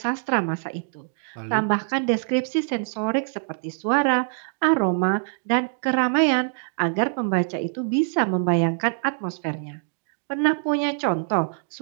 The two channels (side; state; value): left; silent; digital silence